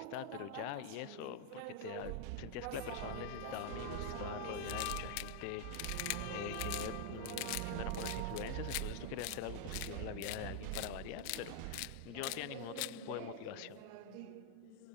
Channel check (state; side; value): different; both; correlation 0.00